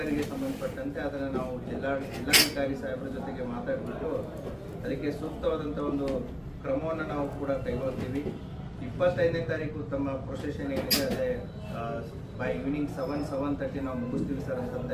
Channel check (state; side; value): identical; both; correlation 1.00